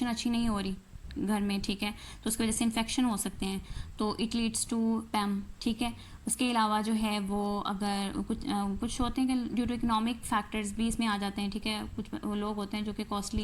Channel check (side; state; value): both; identical; correlation 1.00